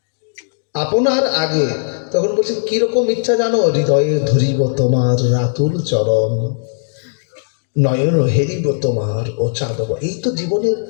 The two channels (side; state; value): right; silent; 68 dB below the other